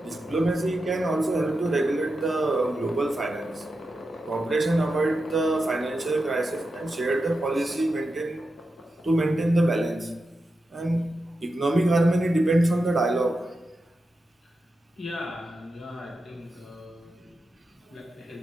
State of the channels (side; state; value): both; normal; correlation 0.89